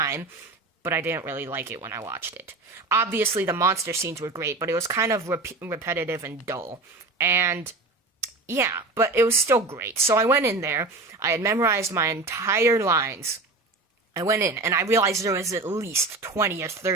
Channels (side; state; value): left; quieter; 3.4 dB